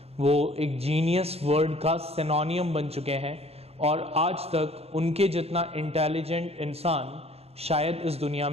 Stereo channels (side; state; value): left; late; 0.29 ms